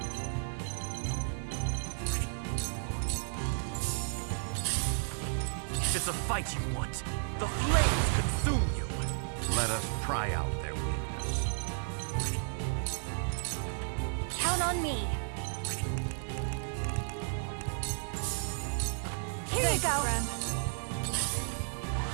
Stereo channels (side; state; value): left; silent; 56 dB below the other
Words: If it's a fight you want, the flames consume you! Let us pry out their weakness. Count on me. Here Thank you go. friend.